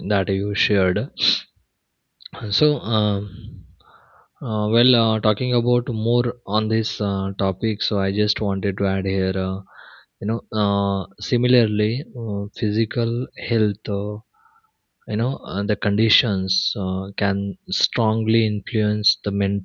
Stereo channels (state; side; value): identical; both; correlation 1.00